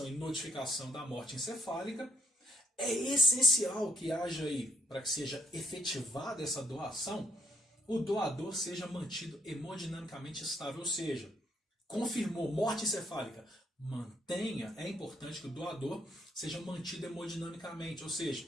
e notificação da morte encefálica, é essencial que haja aí, para que seja efetivada essa doação, o doador seja mantido hemodinamicamente estável, ou seja, confirmou morte encefálica, mantenha, é importante que o doador seja mantido hemodinamicamente, ou seja,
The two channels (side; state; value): both; normal; correlation 0.69